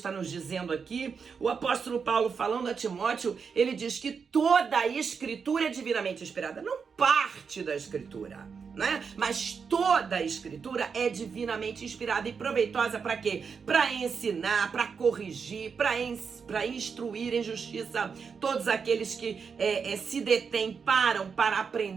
nos dizendo aqui? O apóstolo Paulo, falando a Timóteo, ele diz que toda a escritura é divinamente inspirada, não parte da escritura, né? Mas toda a escritura é divinamente inspirada e proveitosa para quê? Para ensinar, para corrigir, para instruir em justiça todos aqueles que se detêm, param para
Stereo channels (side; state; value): left; quieter; 5.9 dB